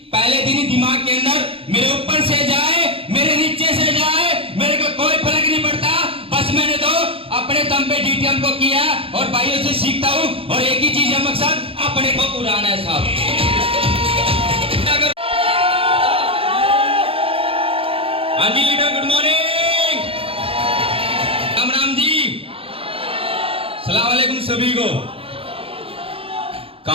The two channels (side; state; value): left; late; 0.27 ms